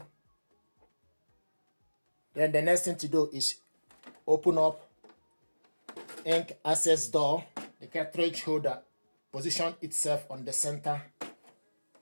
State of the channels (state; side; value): inverted; both; correlation -1.00